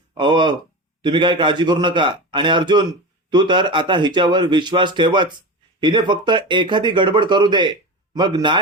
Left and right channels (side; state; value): both; normal; correlation 0.25